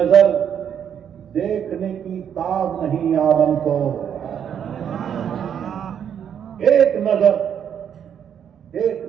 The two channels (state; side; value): quieter; left; 8.6 dB